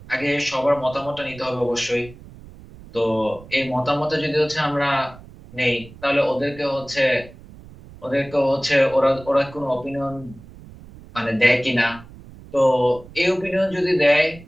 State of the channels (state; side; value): noise; right; rumble, 19 dB below the sound